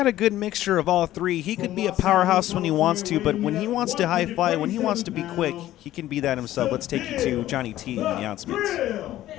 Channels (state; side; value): quieter; right; 14.0 dB